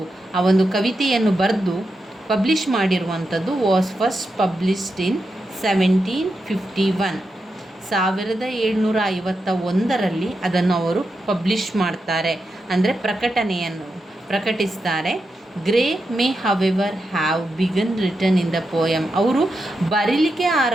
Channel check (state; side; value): normal; both; correlation 0.87